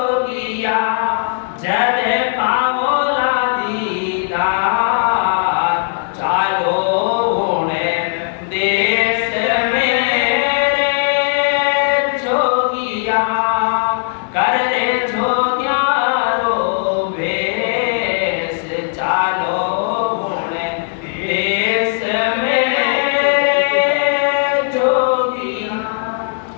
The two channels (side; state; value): right; silent; digital silence